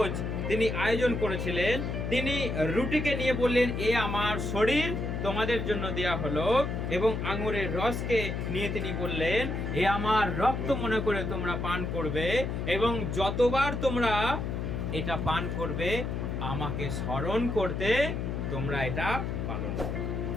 তিনি আয়োজন করেছিলেন। তিনি রুটিকে নিয়ে বললেন, এ আমার শরীর তোমাদের জন্য দেয়া হলো, এবং আঙুরের রসকে নিয়ে তিনি বললেন, এ আমার রক্ত মনে করে তোমরা পান করবে, এবং যতবার তোমরা এটা পান করবে আমাকে স্মরণ করতে তোমরা এটা পালন করবে।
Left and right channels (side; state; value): left; noise; hum, 3 dB below the sound